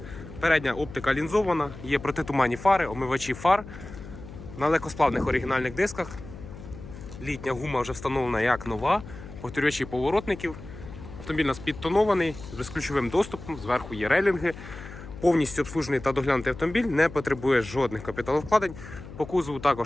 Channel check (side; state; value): left; noise; hum, 14 dB below the sound